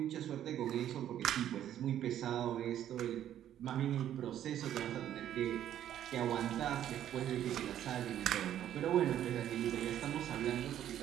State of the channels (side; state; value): left; quieter; 11.1 dB